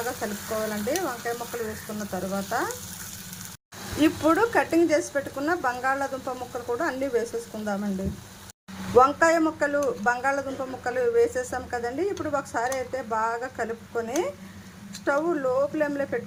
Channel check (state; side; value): identical; both; correlation 1.00